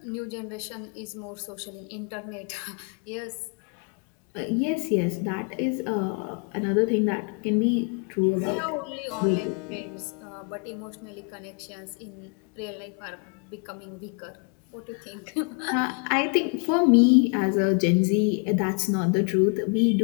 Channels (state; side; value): quieter; right; 35.4 dB